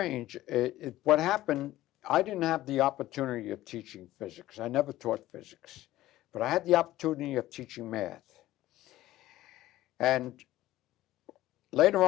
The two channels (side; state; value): right; quieter; 15.4 dB